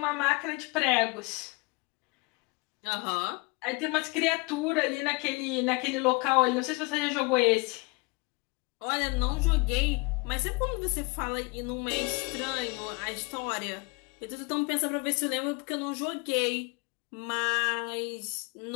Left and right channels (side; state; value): right; quieter; 28.2 dB